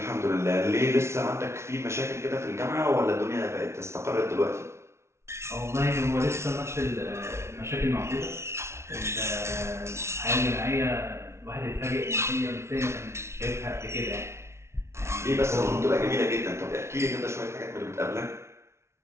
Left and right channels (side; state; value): left; late; 0.13 ms